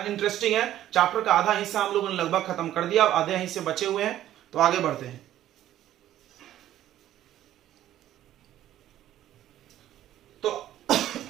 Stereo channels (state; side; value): quieter; left; 12.7 dB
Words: इंटरेस्टिंग है। चैप्टर का आधा हिस्सा हम लोगों ने लगभग खत्म कर दिया, अब आधे हिस्से बचे हुए हैं, तो आगे बढ़ते हैं।